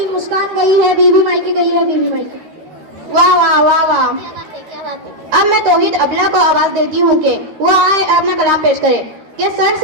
मुस्कान गई है, बीवी मायके गई है, बीवी मायके। वाह वाह वाह वाह। क्या बात है, क्या बात है। अब मैं तौहीद अबला को आवाज देती हूँ कि वो आए अपना कलाम पेश करे। कि सर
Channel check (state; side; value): late; left; 13 ms